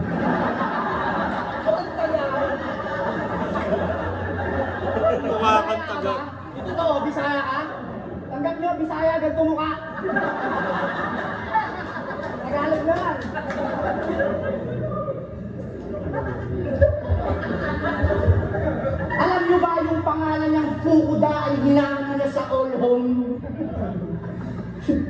ang Tagalog. Mukha kang taga. Ito to, Bisaya ka? Tanggap nyo, Bisaya, ganito mukha. Tagalog naman. Alam nyo ba yung pangalan niyang Fukuda ay hinangan niya sa all home?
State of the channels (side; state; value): both; identical; correlation 1.00